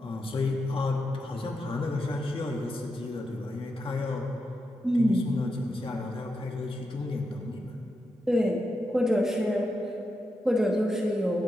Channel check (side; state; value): both; normal; correlation 0.86